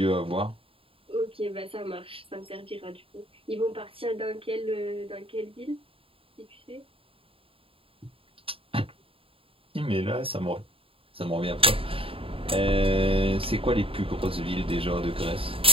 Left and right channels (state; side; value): late; left; 0.27 ms